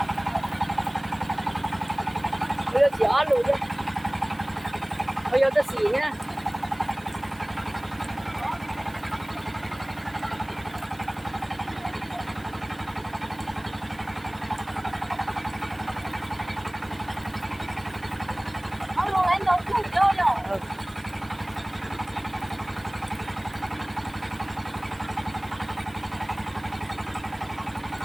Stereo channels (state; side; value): noise; right; hiss, 25 dB below the sound